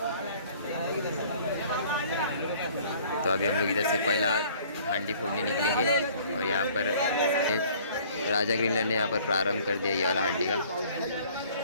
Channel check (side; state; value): both; inverted; correlation -0.54